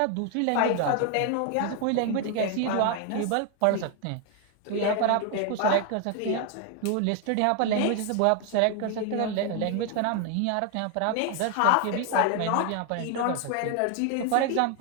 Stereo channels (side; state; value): both; different; correlation 0.01